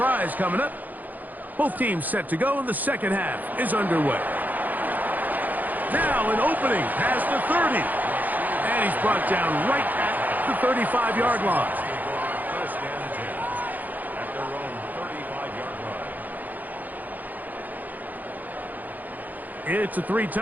coming up. Both teams set to go, and the second half is underway. Now an opening past the 30. And he's brought down right at the 35-yard line. First and 10 at their own 35-yard line. It's a three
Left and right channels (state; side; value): late; left; 0.083 ms